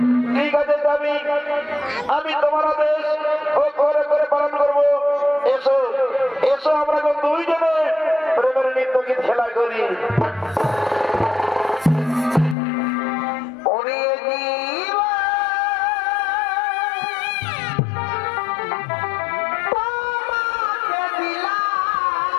ঠিক আছে স্বামী, আমি তোমার আদেশ করে করে পালন করবো। এসো এসো, আমরা দুইজনে প্রেমের নৃত্য গীত খেলা করি।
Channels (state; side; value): drops out; right; at 12.6 s